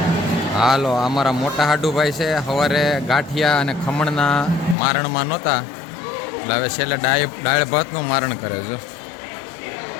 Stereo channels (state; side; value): drops out; right; at 4.8 s